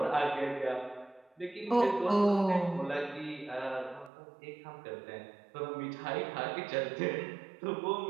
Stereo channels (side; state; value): left; drops out; at 4.1 s